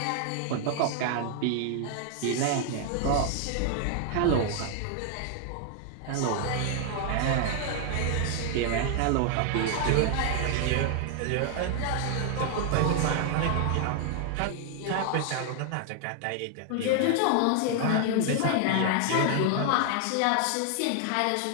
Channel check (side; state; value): both; different; correlation 0.00